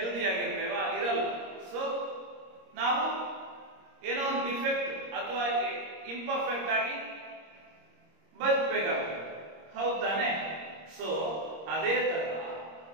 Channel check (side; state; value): left; late; 26 ms